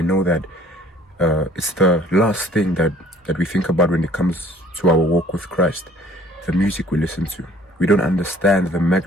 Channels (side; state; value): both; normal; correlation 0.55